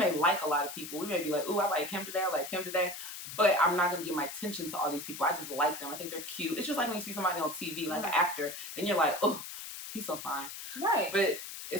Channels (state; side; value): noise; left; hiss, 9 dB below the sound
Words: like a lot of people. We may be like, ooh, I like him today, I like him today. But I'm not going to give my attention to all these people. I just like them. I think they're cute. It's just like when you see somebody on TV, like an actor, and you're like, oh, he's so fine. Right. But